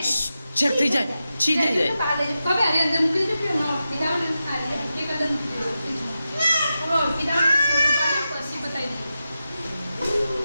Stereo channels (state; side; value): inverted; both; correlation -0.91